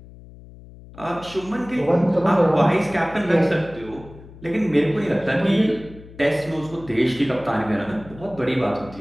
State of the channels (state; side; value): noise; left; hum, 19 dB below the sound